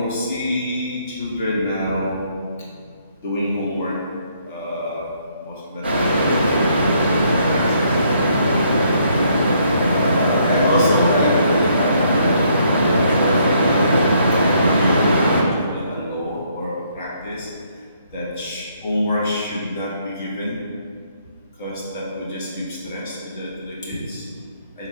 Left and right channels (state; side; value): inverted; both; correlation -0.69